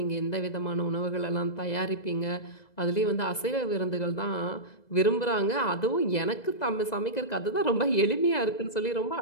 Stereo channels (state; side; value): late; right; 2.0 ms